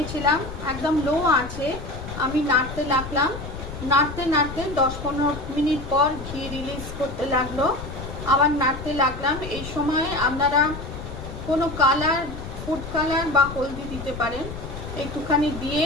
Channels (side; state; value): left; noise; rumble, 10 dB below the sound